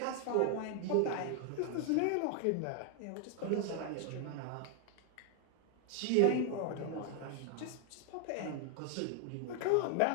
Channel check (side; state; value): both; different; correlation 0.00